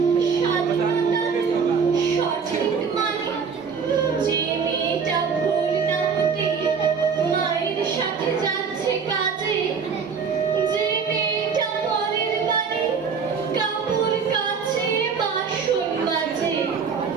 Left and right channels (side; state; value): left; quieter; 6.0 dB